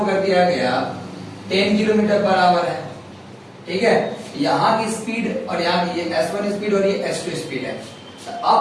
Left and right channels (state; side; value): identical; both; correlation 1.00